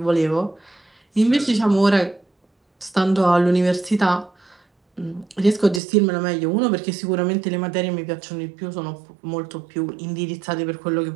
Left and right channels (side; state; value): left; drops out; at 5.8 s